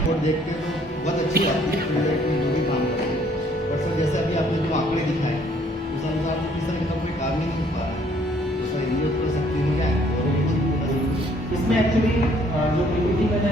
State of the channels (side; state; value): both; normal; correlation 0.63